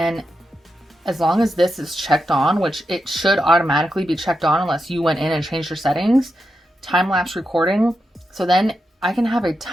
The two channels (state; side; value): normal; both; correlation 0.87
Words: as long as this is checked on, which it should automatically be checked on unless you went in and changed your settings, time-lapse recording. So then I can have a